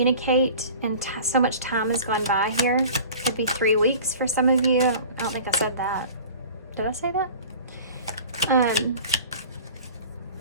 and so much time has gone by here. Could be 3 weeks for some of you. I don't think I said that. Did I say that?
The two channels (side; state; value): both; inverted; correlation -0.41